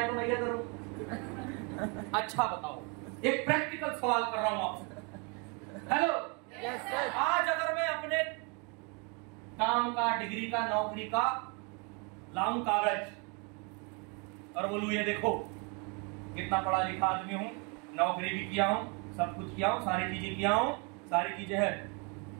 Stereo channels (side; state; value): left; quieter; 33.4 dB